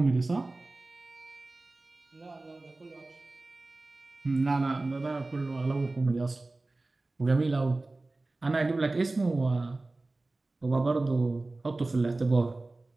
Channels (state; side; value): quieter; left; 3.1 dB